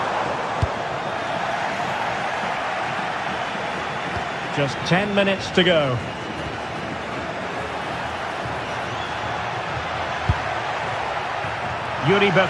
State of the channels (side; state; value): both; identical; correlation 1.00